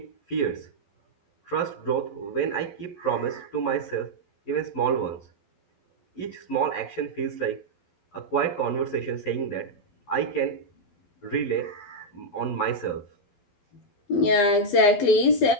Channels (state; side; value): late; right; 12 ms